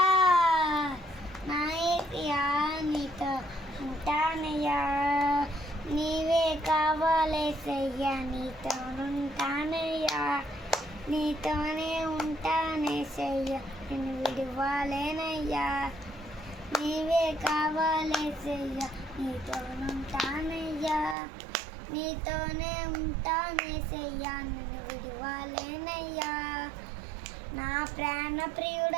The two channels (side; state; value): left; drops out; at 21.2 s